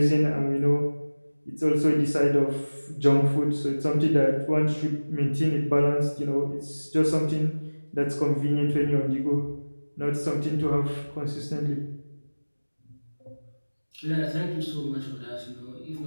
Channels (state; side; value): inverted; both; correlation -1.00